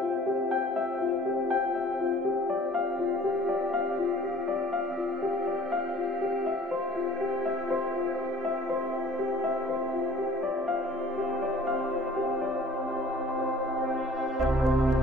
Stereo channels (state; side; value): normal; both; correlation 0.53